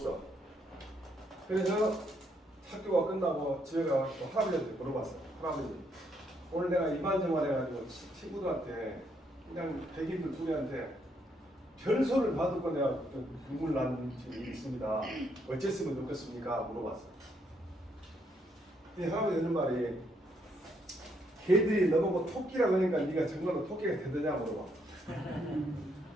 그래서 학교가 끝나고 집에 가서 할아버지한테 물어봤어요. 할아버지 오늘 내가 이만저만 해가지고 친구들한테 그냥 백인들 둘이한테 별소를 받고 내가 눈물 나는 일이 있습니다. 어쨌으면 좋겠습니까? 물어봤어요. 근데 할아버지 하는 말이 걔들이 너보고 토끼라고 하니까 네가 정말로 토끼가 되느냐 물어봐.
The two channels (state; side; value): normal; both; correlation 0.74